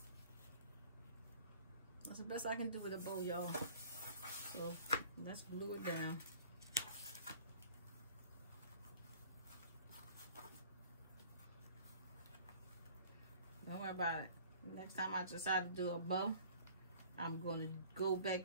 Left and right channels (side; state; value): both; inverted; correlation -0.50